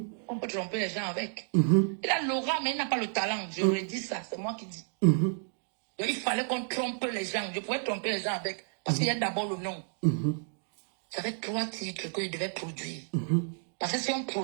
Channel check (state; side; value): silent; left; 57 dB below the other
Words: On peut tromper les gens avec. Il a l'aura, mais il n'a pas le talent. Je lui ai dit ça, c'est moi qui dis. Donc, il fallait qu'on trompe les gens. Je pouvais tromper les gens avec. Parce qu'il y a d'abord le nom. J'avais 3 titres qu'il devait produire. Parce que si on